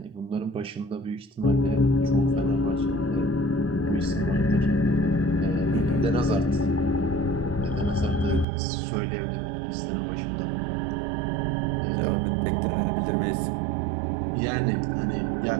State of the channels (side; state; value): left; drops out; at 8.5 s